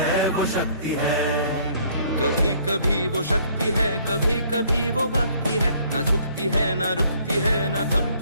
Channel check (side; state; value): both; inverted; correlation -0.61